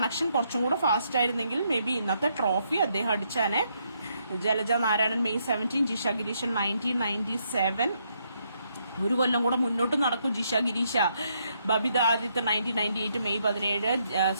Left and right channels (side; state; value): both; inverted; correlation -0.75